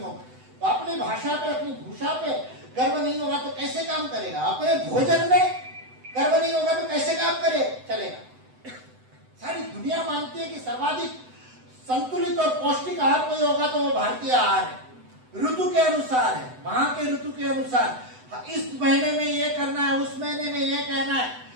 तो अपनी भाषा पे, अपनी भूषा पे गर्व नहीं होगा तो कैसे काम करेगा। अपने भोजन में गर्व नहीं होगा तो कैसे काम चलेगा। सारी दुनिया मानती है कि सर्वाधिक संतुलित और पौष्टिक आहार कोई होगा तो वो भारतीय आहार है, ऋतु के अनुसार है, वहां के ऋतु के अनुसार। इस महीने में ये करना है, उस महीने में ये कहना है।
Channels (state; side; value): late; left; 7.9 ms